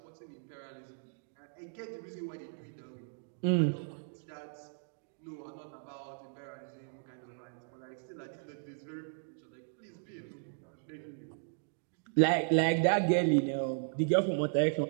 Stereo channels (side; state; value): left; silent; digital silence